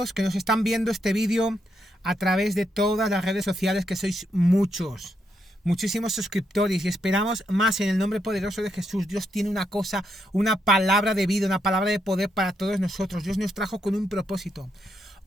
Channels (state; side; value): normal; both; correlation 0.79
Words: que nos están viendo este vídeo a través de todas las redes sociales, que sois muchísimos suscriptores, y esperamos más en el nombre poderoso de Jesús. Dios tiene una cosa, una palabra de vida, una palabra de poder para todos nosotros. Dios nos trajo con un propósito.